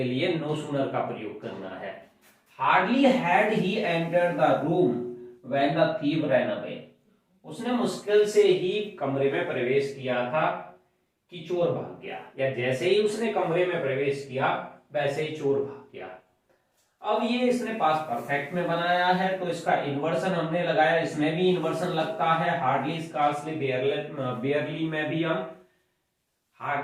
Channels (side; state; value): both; identical; correlation 1.00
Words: लिए नो सूनर का प्रयोग करना है। Hardly had he entered the room when the thief ran away, उसने मुश्किल से ही कमरे में प्रवेश किया था कि चोर भाग गया, या जैसे ही उसने कमरे में प्रवेश किया वैसे ही चोर भाग गया। अब ये इसने पास्ट परफेक्ट में बनाया है तो इसका इन्वर्सन हमने लगाया, इसमें भी इन्वर्सन लगता है। हार्डली, स्कार्सली, बेयरली में भी हम